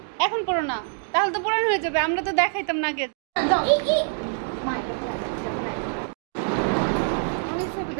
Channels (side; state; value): left; silent; digital silence